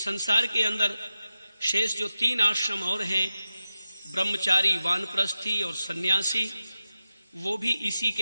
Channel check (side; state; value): both; inverted; correlation -0.92